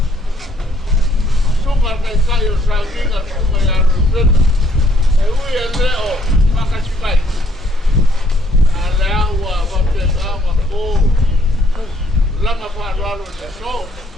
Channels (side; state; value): both; normal; correlation 0.66